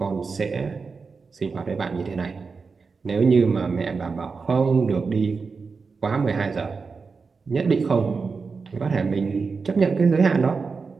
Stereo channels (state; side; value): quieter; left; 4.8 dB